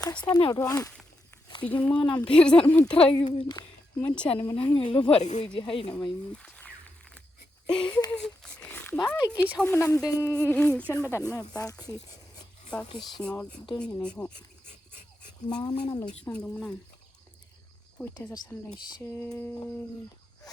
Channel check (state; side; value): normal; both; correlation 0.85